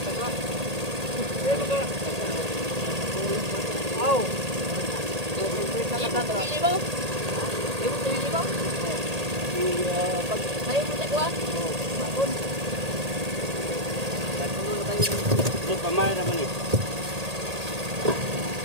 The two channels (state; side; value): late; left; 1.8 ms